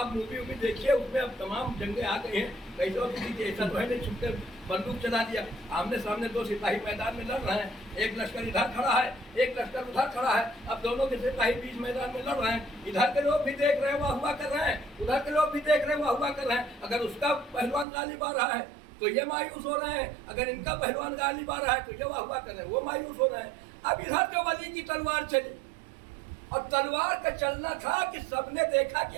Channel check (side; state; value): left; drops out; at 17.9 s